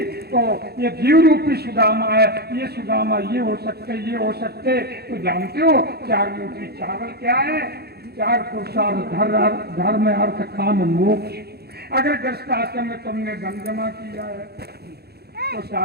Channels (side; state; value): left; late; 0.46 ms